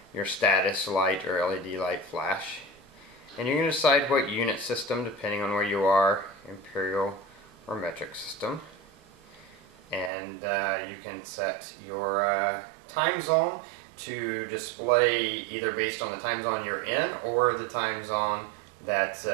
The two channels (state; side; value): drops out; left; at 10.1 s